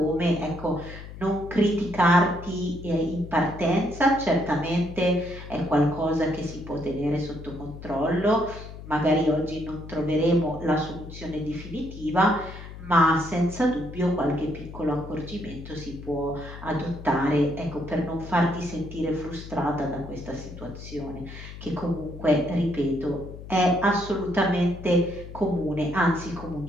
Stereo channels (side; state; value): left; noise; hum, 13 dB below the sound